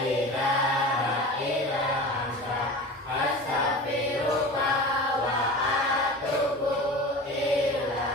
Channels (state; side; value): normal; both; correlation 0.34